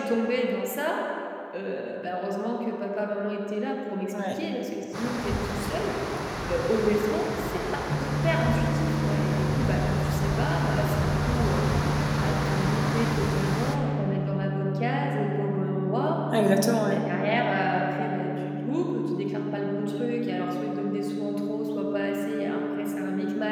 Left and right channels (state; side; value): identical; both; correlation 1.00